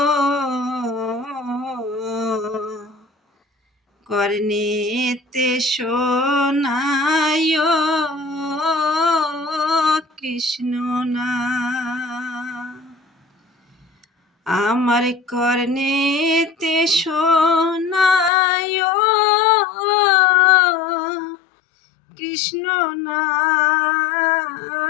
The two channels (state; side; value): drops out; right; at 18.3 s